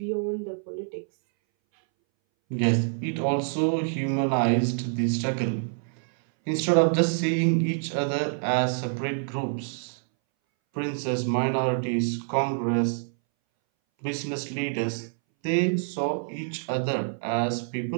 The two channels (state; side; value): silent; left; 60 dB below the other